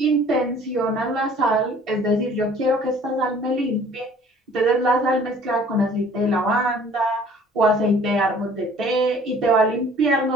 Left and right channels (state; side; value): normal; both; correlation 0.53